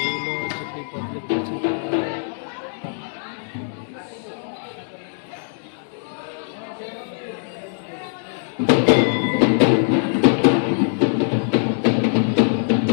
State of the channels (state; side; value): silent; right; digital silence